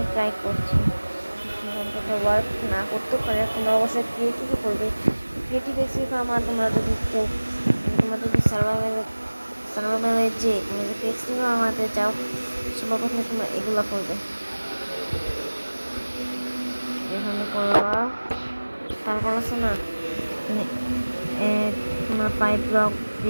ট্রাই করছি, ওয়ার্ক না করতেও পারে। তোমরা অবশ্যই ক্রিয়েটিভই করবে। ক্রিয়েটিভ এক্সপি ফর্ম আর তোমরা যদি কেউ তোমরা যদি সার্ভাইভালে যে তুমি যদি এক্সপি ফর্ম বানাতে চাও সবার প্রথমে তোমরা এগুলো করবে, এখানে করবা। তারপর আছে না তোমরা 5 ব্লক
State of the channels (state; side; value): inverted; both; correlation -1.00